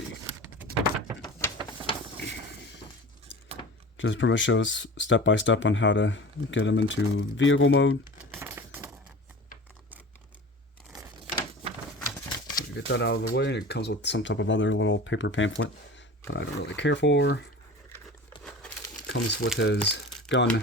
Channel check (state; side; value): normal; both; correlation 0.36